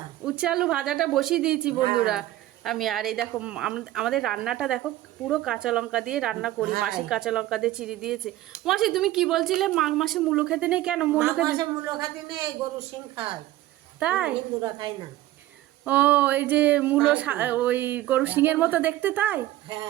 উচ্ছে আলু ভাজাটা বসিয়ে দিয়েছি বন্ধুরা। হ্যাঁ আমি আর এই দেখো আমাদের রান্নাটা দেখো, পুরো কাঁচা লঙ্কা দিয়ে রান্না করি। মাসি হ্যাঁ। কাঁচা লঙ্কা দিয়ে চিড়ে দিয়েছে। মাসি তুমি কি বলছিলে মাঘ মাসে মূলো খেতে নেই? কেন মূলো মাঘ খেতে? মাসে মূলো খাতে নেই, গরু শিং খায়। তাই? হিন্দুরা খায় না। ও, এই যে মূলো তাই তো। ওই গরু শিঙের এখন মতো দেখতে, তাই?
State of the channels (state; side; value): quieter; left; 15.3 dB